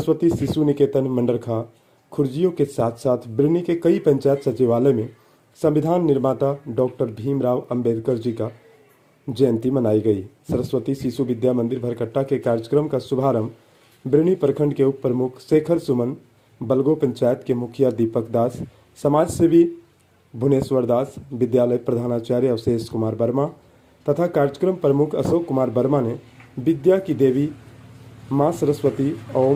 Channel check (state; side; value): identical; both; correlation 1.00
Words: शिशु निकेतन मंडरखा, खुर्जियों के साथ साथ बिरनी के कई पंचायत सचिवालय में संविधान निर्माता डॉक्टर भीमराव अंबेडकर जी का जयंती मनाई गई। सरस्वती शिशु विद्या मंदिर भरकट्टा के कार्यक्रम का शुभारंभ बिरनी प्रखंड के उप प्रमुख शेखर सुमन, बलगो पंचायत के मुखिया दीपक दास, समाज सेवी भुवनेश्वर दास, विद्यालय प्रधानाचार्य अवशेष कुमार वर्मा तथा कार्यक्रम प्रमुख अशोक कुमार वर्मा ने विद्या की देवी मां सरस्वती